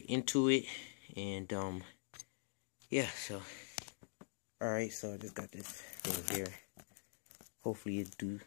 into it, and yeah. So all right. So I just got this thing here. Hopefully it do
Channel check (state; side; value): silent; right; digital silence